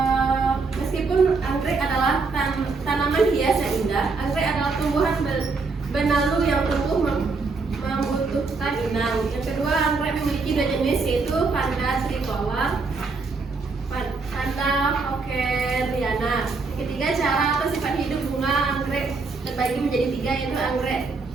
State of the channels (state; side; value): quieter; left; 4.2 dB